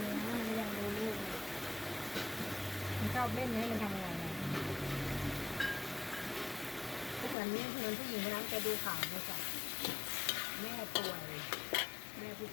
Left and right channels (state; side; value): drops out; right; at 7.4 s